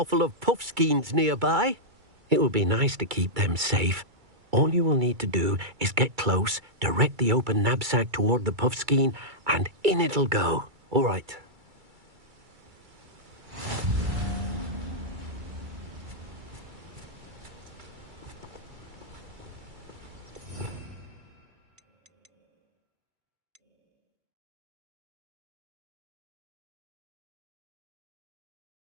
of puffskeins nearby. It will be nice to keep them safe. All you will need to do is get close, direct the open knapsack toward the puffskein, and in it'll go. All right.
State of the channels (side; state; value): left; late; 2.3 ms